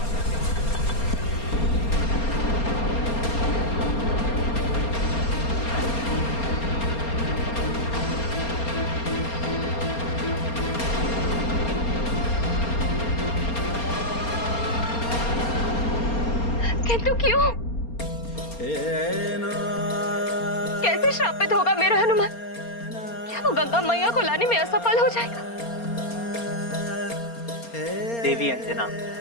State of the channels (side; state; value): right; late; 4.3 ms